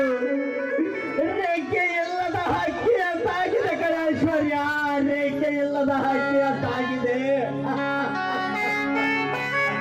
ರೇಖೆ ಇಲ್ಲದ ಹಕ್ಕಿ ಅಂತಾಗಿದೆ ಕಣ ಐಶ್ವರ್ಯ, ರೇಖೆ ಇಲ್ಲದ ಹಕ್ಕಿ ಅಂತಾಗಿದೆ.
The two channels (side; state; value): both; identical; correlation 1.00